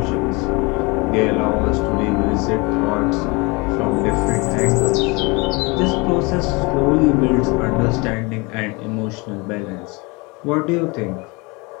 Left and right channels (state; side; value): quieter; right; 26.9 dB